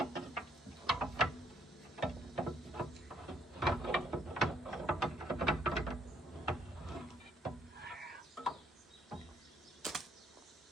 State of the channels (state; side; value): normal; both; correlation 0.68